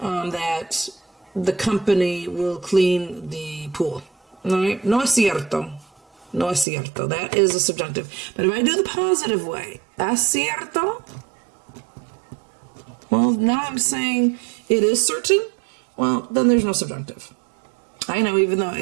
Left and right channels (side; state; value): left; drops out; at 6.7 s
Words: that the company will clean the pool. All right? No es cierto. No es cierto. That is a subjunctive. But if I do the positive way, es cierto, well, now I'm saying it is certain. Well, then there's no subjunctive. I know, even though